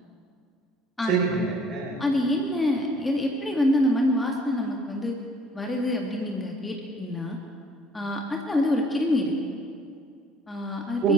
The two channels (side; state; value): both; normal; correlation 0.58